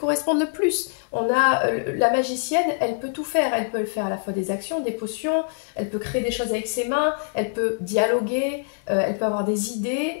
le plus. On a la magicienne, elle peut tout faire. Elle peut faire à la fois des actions, des potions, elle peut créer des choses avec ses mains, elle peut dialoguer, elle peut avoir des idées.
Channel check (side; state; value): right; silent; digital silence